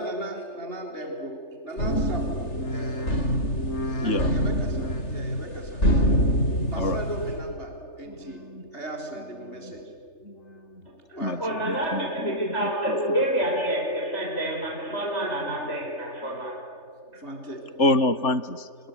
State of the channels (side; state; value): right; late; 3.3 ms